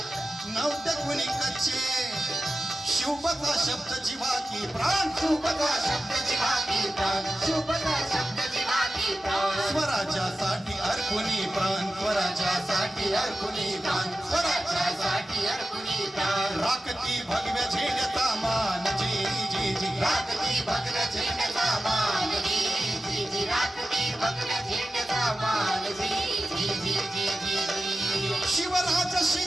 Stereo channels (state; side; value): normal; both; correlation 0.93